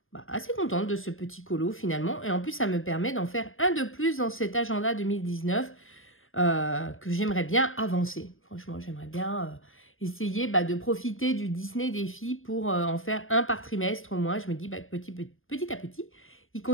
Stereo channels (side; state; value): right; late; 0.59 ms